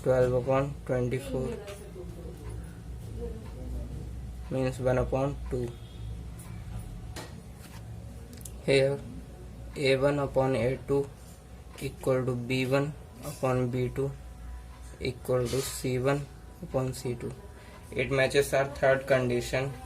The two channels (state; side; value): identical; both; correlation 1.00